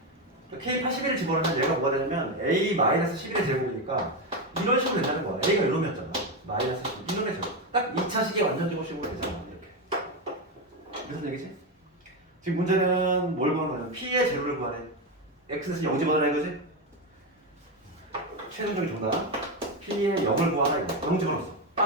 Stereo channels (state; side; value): normal; both; correlation 0.11